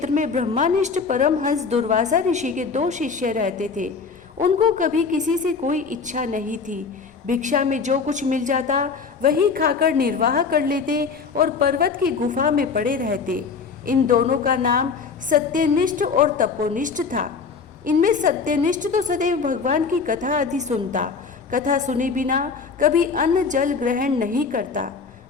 में ब्रह्मानिष्ठ परमहंस दुर्वासा ऋषि के 2 शिष्य रहते थे। उनको कभी किसी से कोई इच्छा नहीं थी। भिक्षा में जो कुछ मिल जाता वही खाकर निर्वाह कर लेते और पर्वत की गुफा में पड़े रहते। इन दोनों का नाम सत्यनिष्ठ और तपोनिष्ठ था। इनमें सत्यनिष्ठ तो सदैव भगवान की कथा आदि सुनता, कथा सुने बिना कभी अन्न जल ग्रहण नहीं करता।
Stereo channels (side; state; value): right; quieter; 5.2 dB